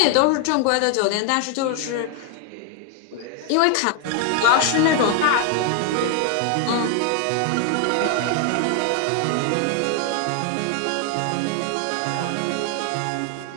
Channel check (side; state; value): both; different; correlation 0.00